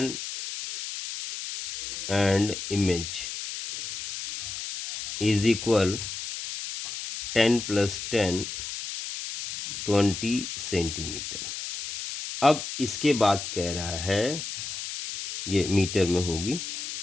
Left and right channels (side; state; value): left; noise; hiss, 7 dB below the sound